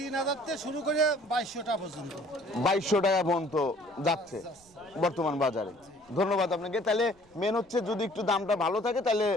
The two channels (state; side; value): noise; right; rumble, 29 dB below the sound